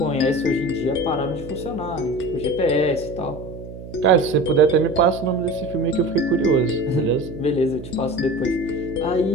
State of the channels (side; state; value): right; noise; hum, 13 dB below the sound